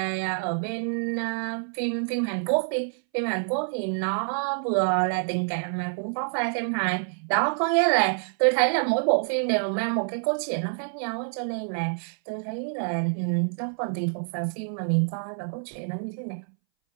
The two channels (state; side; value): silent; left; 60 dB below the other